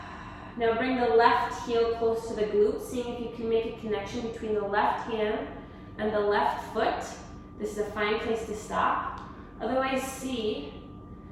Now bring the left heel close to the glute, seeing if you can make a connection between the left hand and the left foot. This is a fine place to stop. Otherwise, see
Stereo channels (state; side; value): identical; both; correlation 1.00